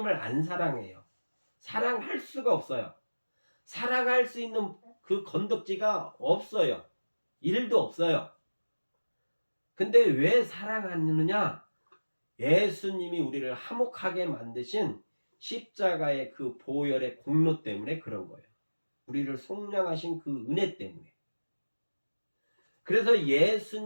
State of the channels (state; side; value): inverted; both; correlation -1.00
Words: 안 사랑해요. 사랑할 수가 없어요. 사랑할 수 있는 그 건덕지가 없어요. 일도 없어요. 근데 왜 사랑하느냐? 예수님이 우리를 화목하게 만드신 십자가의 그 보혈의 공로 때문에 그런 거예요. 우리를 속량하신 그 은혜 때문에. 그래서